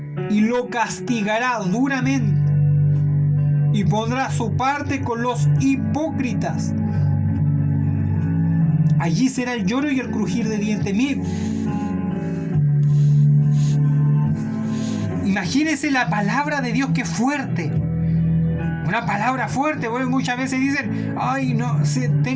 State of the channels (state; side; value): identical; both; correlation 1.00